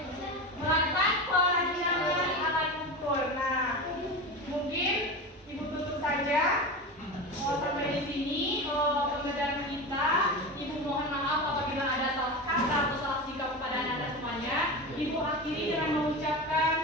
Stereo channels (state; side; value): normal; both; correlation 0.25